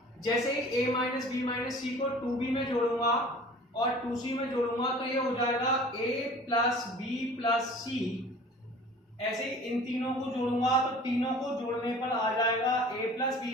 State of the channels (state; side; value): normal; both; correlation 0.45